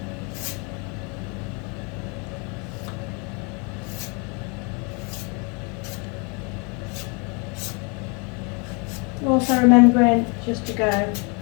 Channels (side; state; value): right; quieter; 32.8 dB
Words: Also remembering just to go